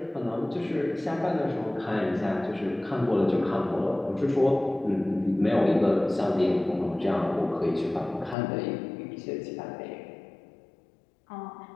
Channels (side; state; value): right; drops out; at 8.3 s